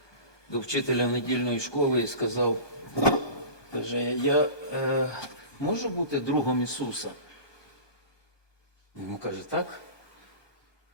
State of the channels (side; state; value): right; late; 1.2 ms